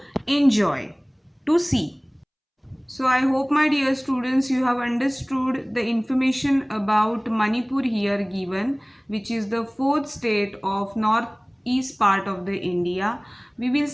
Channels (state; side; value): identical; both; correlation 1.00